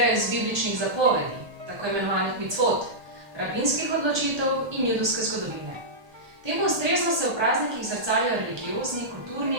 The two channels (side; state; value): left; late; 1.2 ms